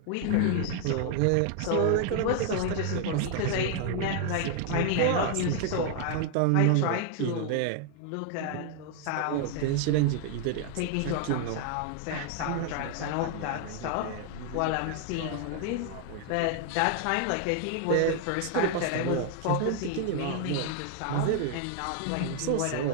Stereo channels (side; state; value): both; different; correlation 0.00